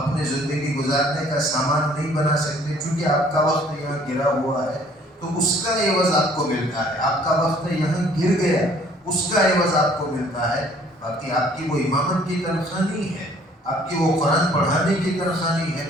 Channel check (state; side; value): normal; both; correlation 0.58